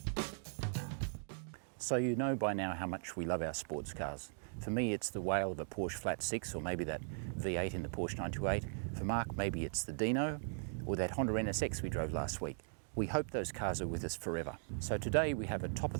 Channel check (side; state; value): left; silent; digital silence